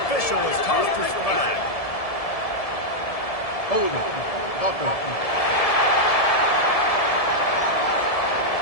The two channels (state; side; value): late; right; 1.7 ms